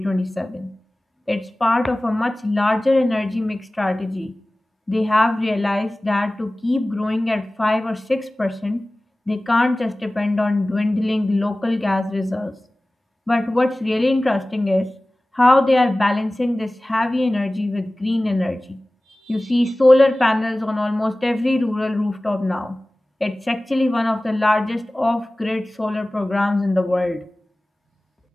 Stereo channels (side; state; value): both; normal; correlation 0.98